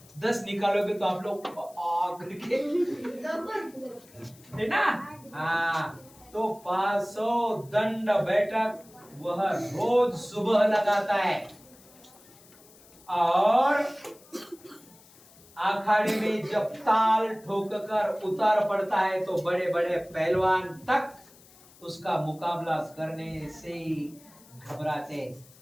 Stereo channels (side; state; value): left; noise; hiss, 25 dB below the sound